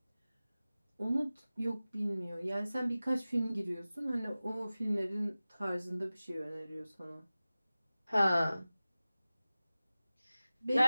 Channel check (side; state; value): both; inverted; correlation -0.97